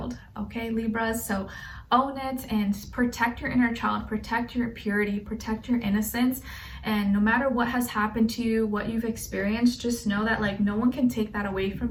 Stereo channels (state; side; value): identical; both; correlation 1.00